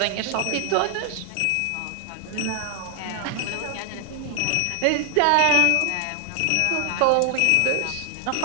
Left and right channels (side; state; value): both; different; correlation 0.00